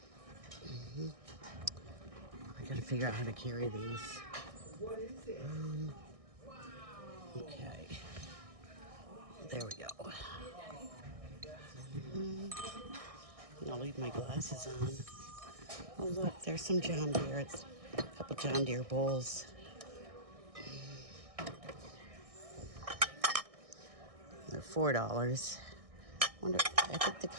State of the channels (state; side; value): late; left; 1.6 ms